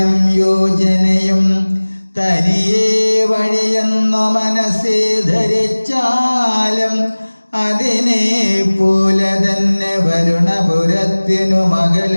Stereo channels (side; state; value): both; inverted; correlation -1.00